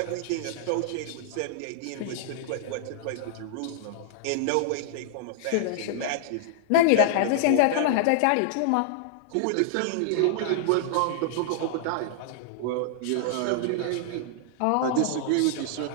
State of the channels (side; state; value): both; different; correlation -0.01